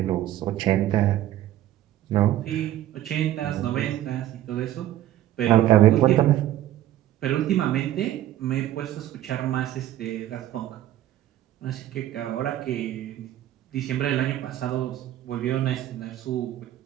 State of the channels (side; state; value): left; quieter; 13.1 dB